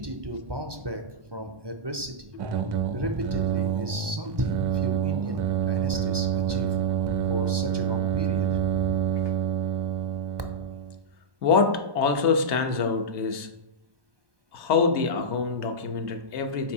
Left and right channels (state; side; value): late; left; 1.2 ms